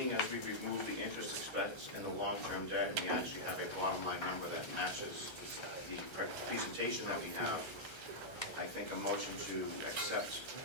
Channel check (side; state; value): right; late; 1.3 ms